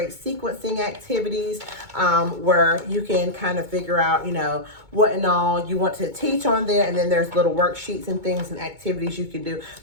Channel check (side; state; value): left; late; 2.2 ms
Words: sequencing activities where you can kind of figure out, what and all you want to teach on there. And then there's little worksheets and things and activities you can do.